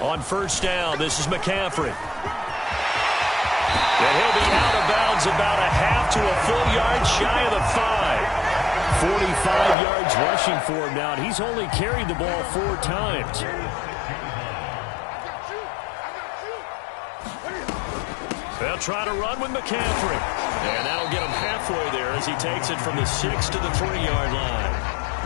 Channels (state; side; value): drops out; right; at 9.8 s